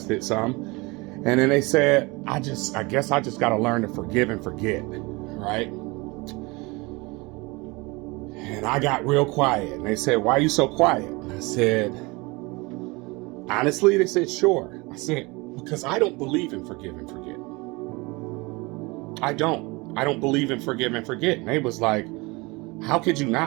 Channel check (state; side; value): quieter; left; 25.2 dB